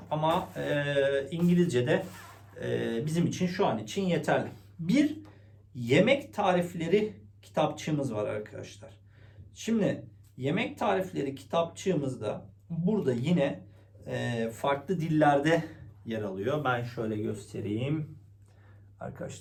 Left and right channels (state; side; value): identical; both; correlation 1.00